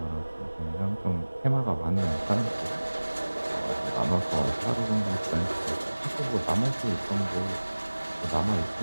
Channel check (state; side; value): inverted; both; correlation -1.00